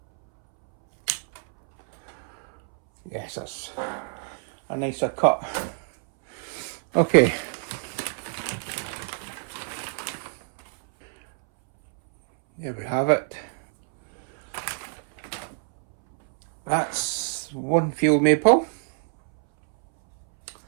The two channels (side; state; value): left; silent; 61 dB below the other